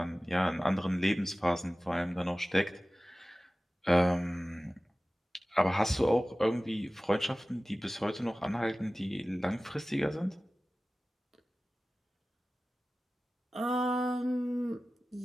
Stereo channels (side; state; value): both; normal; correlation 0.97